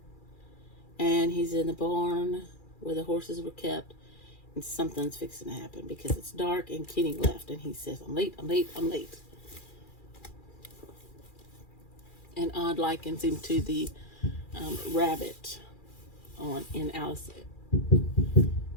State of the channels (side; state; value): right; late; 2.4 ms